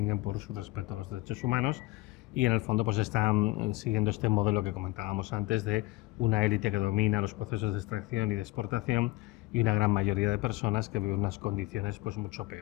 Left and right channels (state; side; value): quieter; right; 20.5 dB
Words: por su respeto a los derechos humanos, y en el fondo pues están siguiendo este modelo que comentábamos antes, de una élite que domina los procesos de extracción y de exportación, y una gran mayoría de personas que viven unas condiciones pues mucho